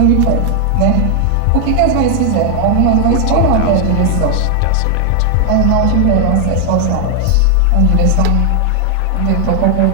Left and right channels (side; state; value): both; different; correlation 0.00